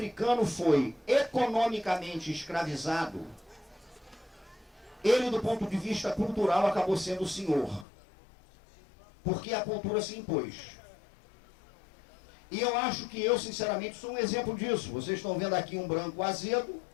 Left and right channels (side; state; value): right; drops out; at 7.9 s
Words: foi economicamente escravizado, ele, do ponto de vista cultural, acabou sendo o senhor. Porque a cultura se impôs. E eu acho que eu, sinceramente, sou um exemplo disso. Vocês estão vendo aqui um branco azedo,